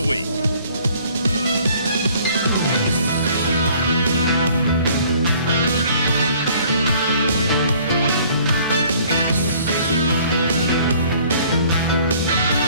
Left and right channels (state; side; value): inverted; both; correlation -0.56